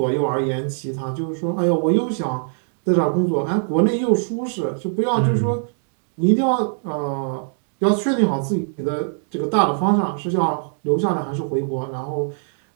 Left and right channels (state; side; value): silent; left; 64 dB below the other